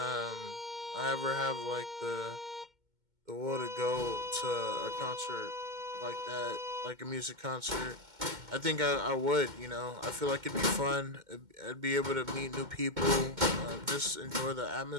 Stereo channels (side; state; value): left; late; 2.1 ms